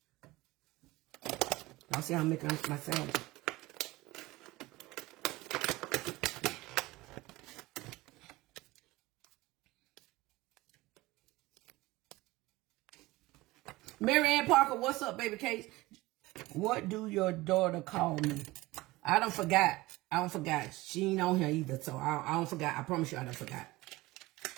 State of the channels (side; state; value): left; quieter; 19.9 dB